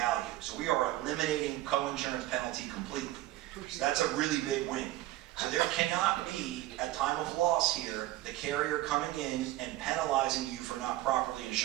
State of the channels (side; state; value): left; quieter; 16.1 dB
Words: So we are eliminating coinsurance penalty completely. So that's a really big win. So there cannot be, at time of loss here, the carrier coming in and penalizing you for not properly